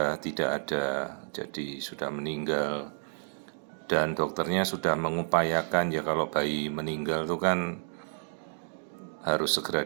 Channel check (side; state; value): left; silent; digital silence